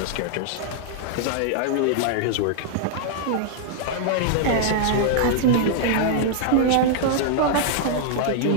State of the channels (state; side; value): different; both; correlation -0.01